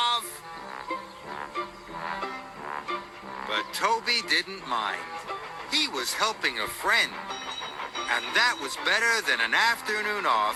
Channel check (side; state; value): both; identical; correlation 1.00